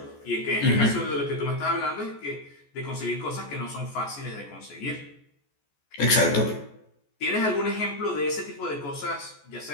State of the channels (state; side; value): late; right; 14 ms